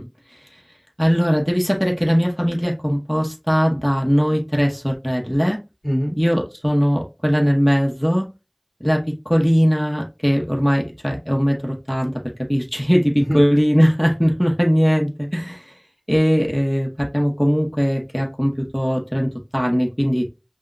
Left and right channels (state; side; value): identical; both; correlation 1.00